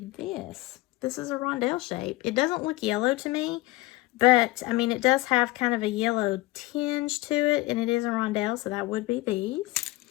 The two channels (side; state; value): right; quieter; 20.0 dB